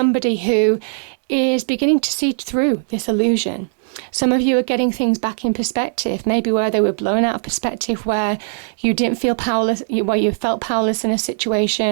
who is beginning to see through this illusion. Some of you are getting things back in perspective, maybe where they were blown out of perspective, where you didn't feel powerless, where you felt powerless in a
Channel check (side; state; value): left; silent; digital silence